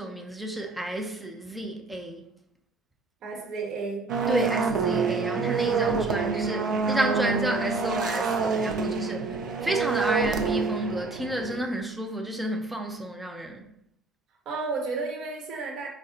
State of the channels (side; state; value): left; quieter; 3.2 dB